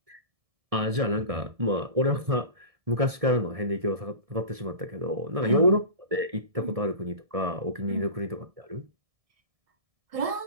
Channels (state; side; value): late; left; 1.7 ms